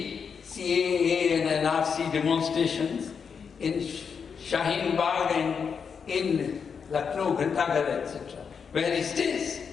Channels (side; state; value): right; quieter; 6.3 dB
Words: and NRC demonstrations in Shaheen Bagh and in Lucknow, Ghantaghar, etc., where he stays.